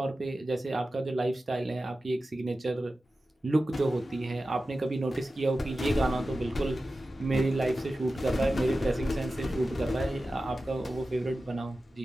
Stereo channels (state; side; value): normal; both; correlation 0.94